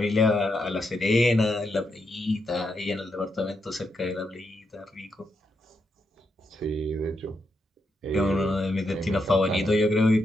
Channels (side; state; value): both; normal; correlation 0.82